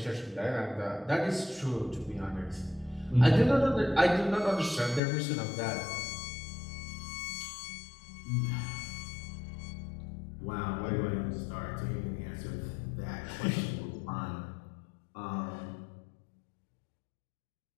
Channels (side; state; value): right; drops out; at 5.0 s